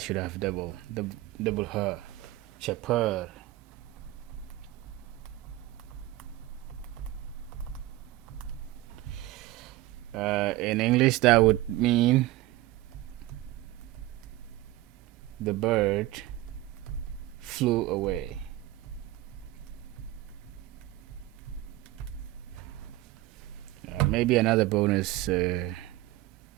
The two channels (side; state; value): left; quieter; 16.5 dB